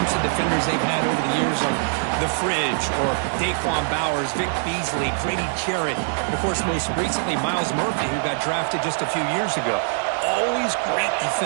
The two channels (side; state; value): left; silent; digital silence